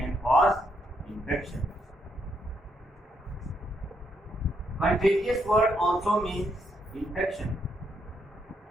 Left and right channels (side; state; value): both; normal; correlation 0.76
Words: cause infection. Contagious word also means infection.